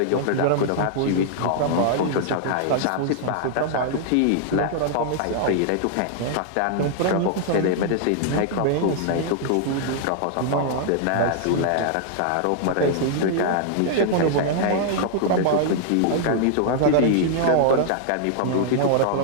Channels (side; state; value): both; different; correlation -0.01